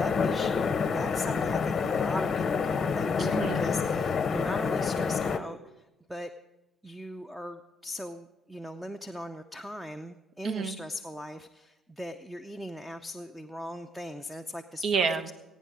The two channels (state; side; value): quieter; right; 3.0 dB